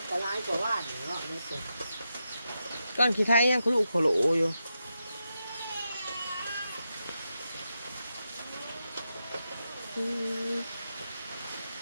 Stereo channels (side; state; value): both; inverted; correlation -0.87